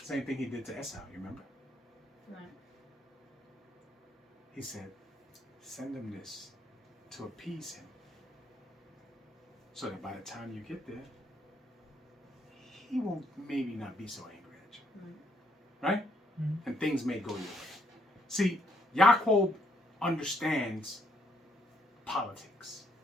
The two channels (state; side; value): normal; both; correlation 0.72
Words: Same thing he did to Esau, you remember? Right. He said, send him this to appease him. So that by the time you get there, he won't maybe not be so angry at you. Right? Mm-hmm. And things may go your way. See, Yaakov understands politics.